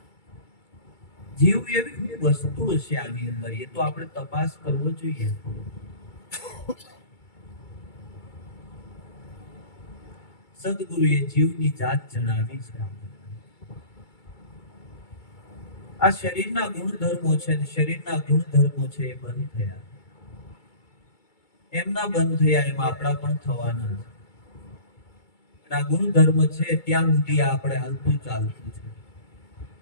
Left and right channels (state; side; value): late; right; 2.3 ms